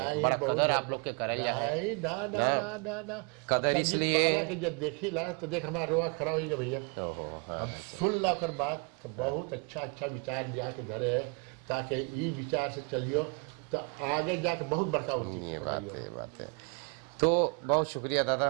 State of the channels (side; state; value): left; quieter; 33.9 dB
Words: नहीं बड़ा बहुत कदर आप लोग के करें जाए। नहीं ना ना ना ना ना अब कदर संगीत इसलिए- माला के जब देखी ला तो देख हमारा रोआ खड़ा हो गया भैया। ओहो, हाँ। हम सुन ला कर बात तो बहुत अच्छा अच्छा विचार लिया के धरे है, ताकि ई विचार से चलियो तो आगे जाके बहुत बड़का होती ये बात कमाइयो। है, ये बात है। तो बहुत शुक्रिया दादा,